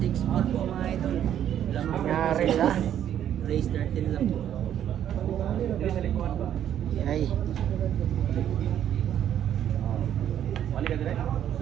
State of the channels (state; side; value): quieter; left; 10.3 dB